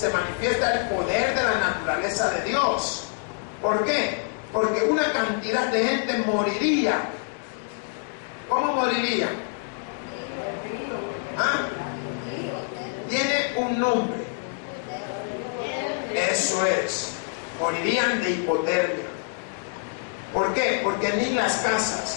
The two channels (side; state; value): right; silent; 61 dB below the other